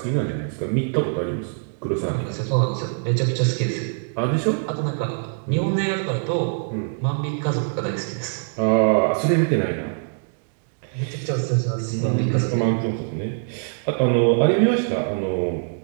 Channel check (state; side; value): silent; left; digital silence